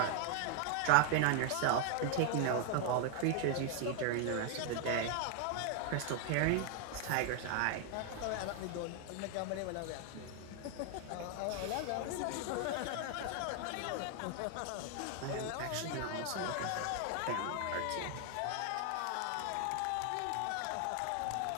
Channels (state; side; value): different; both; correlation 0.00